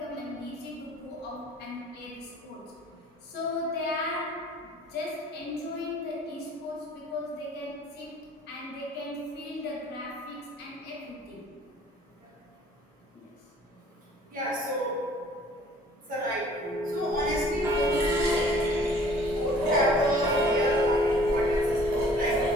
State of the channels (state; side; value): normal; both; correlation 0.53